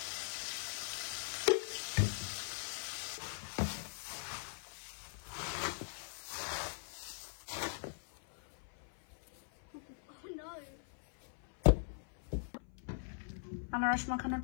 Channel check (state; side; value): silent; right; 51 dB below the other